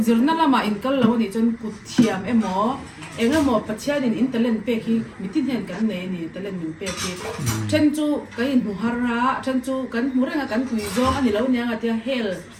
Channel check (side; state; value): both; identical; correlation 1.00